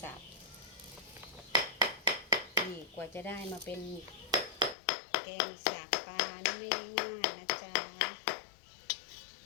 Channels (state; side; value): drops out; right; at 4.8 s